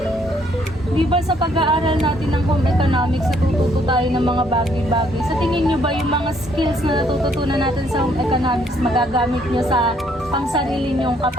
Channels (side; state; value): both; normal; correlation 0.67